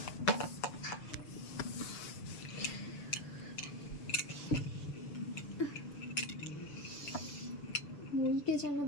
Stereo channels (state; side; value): late; right; 6.9 ms